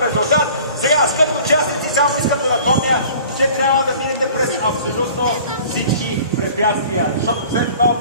резултат. Сега, скъпи участници, само искам да напомня, че трябва да минете през абсолютно всички препятствия. Защото след това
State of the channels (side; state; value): both; inverted; correlation -0.47